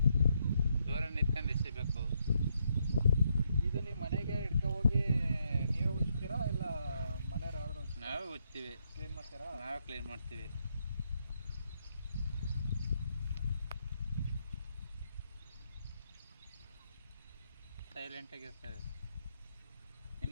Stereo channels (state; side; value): inverted; both; correlation -0.77